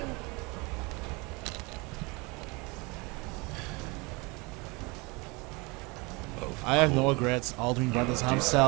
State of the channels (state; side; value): quieter; left; 26.9 dB